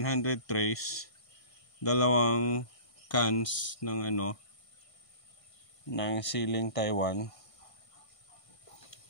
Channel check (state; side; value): late; right; 1.5 ms